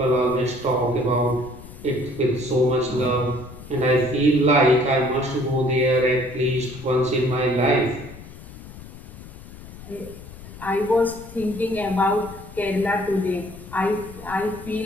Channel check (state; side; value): noise; left; rumble, 16 dB below the sound